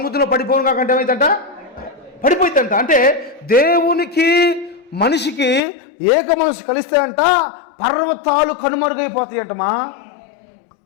పడిపోను కాకంటే ఏమైందంట? పడిపోయిందంట. అంటే దేవునికి మనిషికి ఏక మనసు కలిస్తే అంట పర్వతాలు కనుమరుగైపోతాయంటమా.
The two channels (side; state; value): right; drops out; at 5.6 s